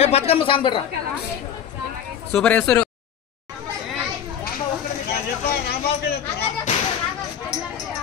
బతుకమ్మ సాంగ్ పెట్టరా సూపర్ వేస్తారు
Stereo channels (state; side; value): quieter; right; 8.9 dB